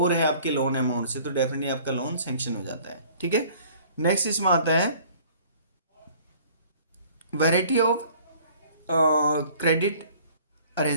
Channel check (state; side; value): inverted; both; correlation -0.53